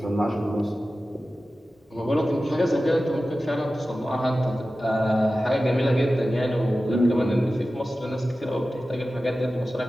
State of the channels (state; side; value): normal; both; correlation 0.95